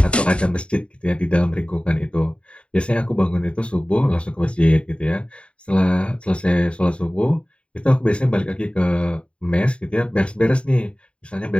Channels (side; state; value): right; late; 0.057 ms